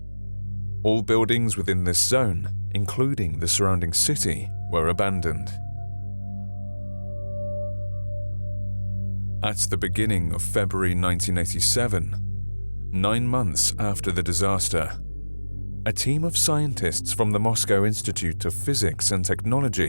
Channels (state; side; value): inverted; both; correlation -1.00